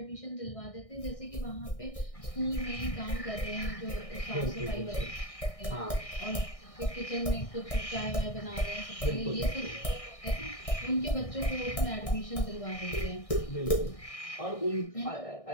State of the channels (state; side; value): late; right; 1.6 ms